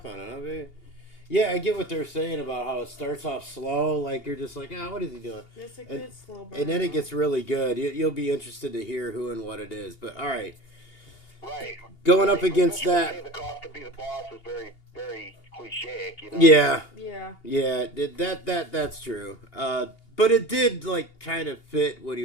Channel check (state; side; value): late; right; 2.8 ms